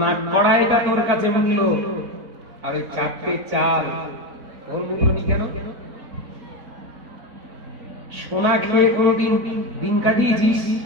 নাক কড়াইটা তোর কাছে মূল্য, আর ওই 4টে চাল ওর মূল্য নেই কেন? সোনা খেয়ে কোনদিন দিন কাটিয়েছিস?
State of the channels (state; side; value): late; left; 4.0 ms